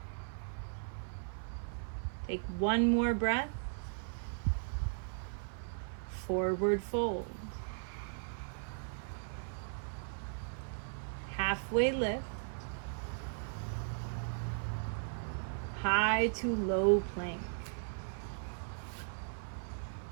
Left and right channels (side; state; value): left; silent; 53 dB below the other